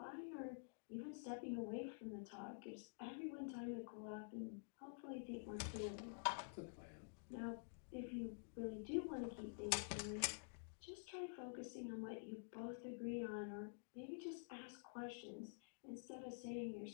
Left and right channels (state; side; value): silent; right; digital silence